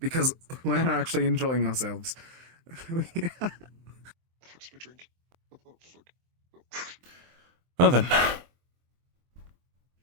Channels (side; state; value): left; late; 23 ms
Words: because we're actually enjoying ourselves. Well then.